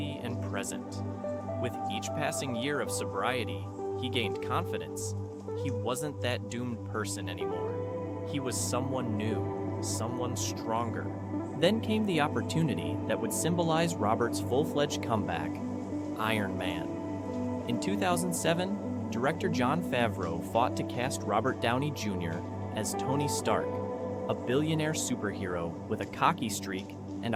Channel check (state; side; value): identical; both; correlation 1.00